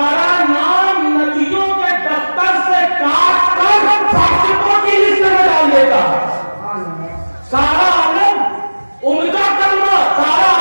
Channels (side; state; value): both; inverted; correlation -1.00